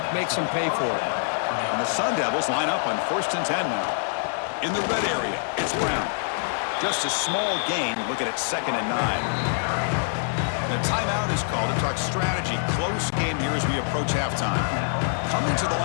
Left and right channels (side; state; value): right; silent; digital silence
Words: makes them pay for it. And the Sun Devils line up on 1st and 10 now. In the red area, it's Brown. Just a small gain. Looking at 2nd and 9. The timeout is called to talk strategy. Close game here as we approach halftime. Coming to the